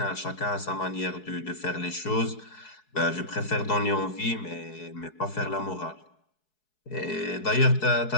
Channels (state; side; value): late; right; 4.7 ms